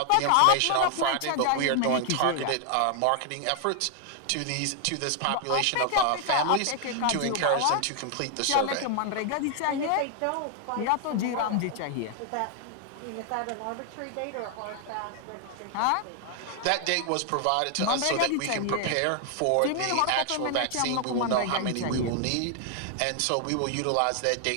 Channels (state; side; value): different; both; correlation 0.00